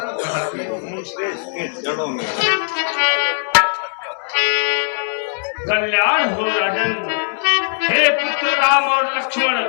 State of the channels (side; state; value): right; silent; 64 dB below the other